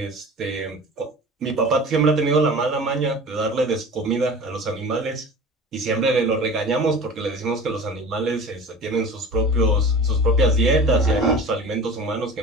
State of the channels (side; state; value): both; normal; correlation 0.38